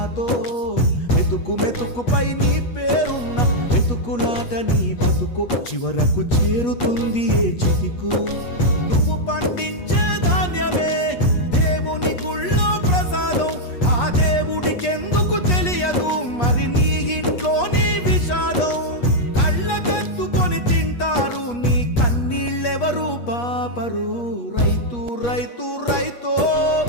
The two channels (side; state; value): right; late; 8.3 ms